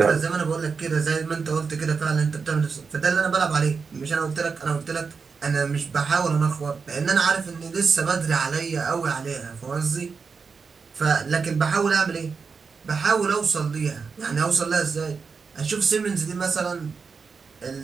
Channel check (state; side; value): quieter; left; 5.2 dB